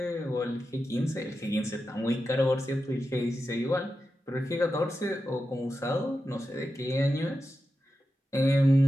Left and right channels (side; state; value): both; normal; correlation 0.90